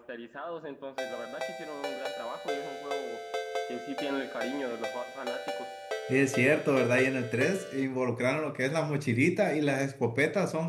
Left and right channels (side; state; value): both; identical; correlation 1.00